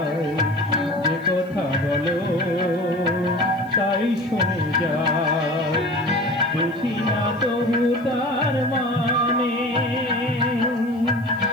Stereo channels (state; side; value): noise; right; hiss, 30 dB below the sound